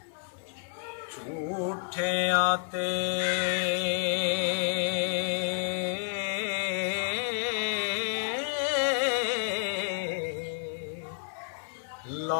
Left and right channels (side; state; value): right; silent; 58 dB below the other